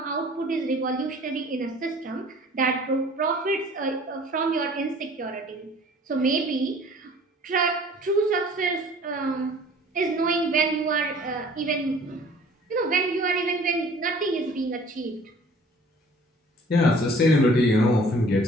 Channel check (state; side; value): normal; both; correlation 0.51